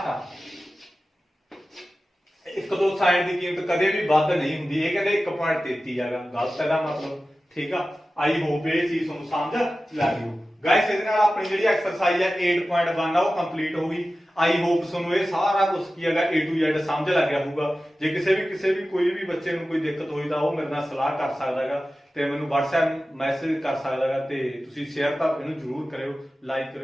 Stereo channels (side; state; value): both; normal; correlation 0.95